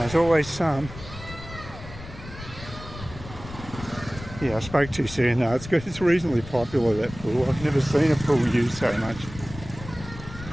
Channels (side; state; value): left; noise; rumble, 13 dB below the sound